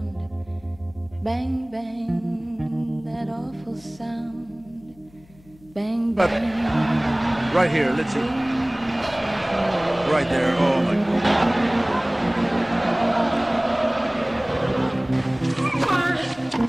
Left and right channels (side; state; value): left; noise; hum, 26 dB below the sound